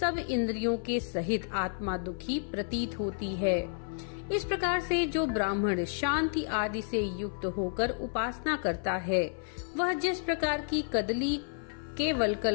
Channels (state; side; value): silent; right; 57 dB below the other